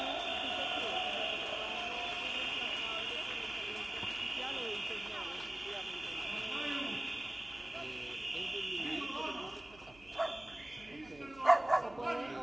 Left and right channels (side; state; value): right; noise; hum, 22 dB below the sound